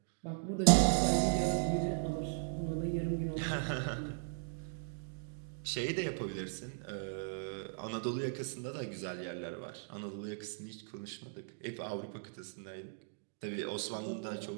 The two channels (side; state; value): left; silent; digital silence